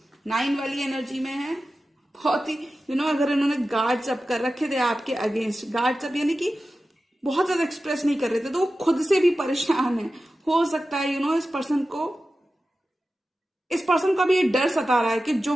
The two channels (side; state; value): both; normal; correlation 0.94